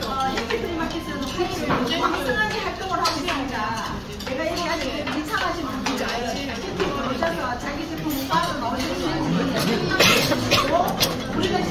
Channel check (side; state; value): both; identical; correlation 1.00